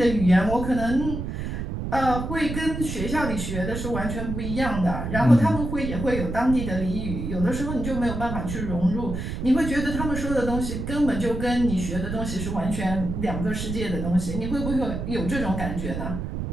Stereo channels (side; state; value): right; noise; rumble, 5 dB below the sound